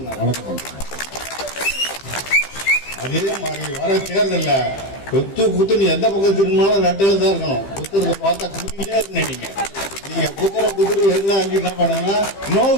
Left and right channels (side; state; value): right; late; 15 ms